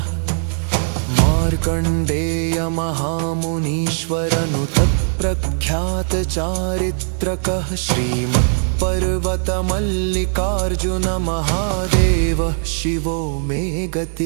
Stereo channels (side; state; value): left; silent; digital silence